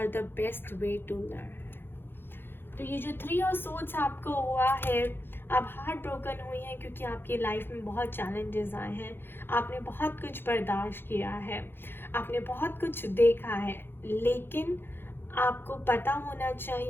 the best way to learn. तो ये जो 3 ऑफ सोर्ड्स आपको हुआ है, आप हार्ट ब्रोकन हुई हैं क्योंकि आपकी लाइफ में बहुत चैलेंजेस आए हैं, आपने बहुत कुछ बर्दाश्त किया है, आपने बहुत कुछ देखा है, लेकिन आपको पता होना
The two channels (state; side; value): late; right; 0.10 ms